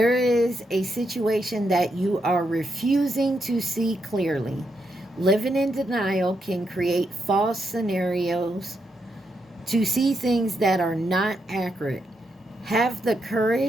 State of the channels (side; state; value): both; normal; correlation 0.81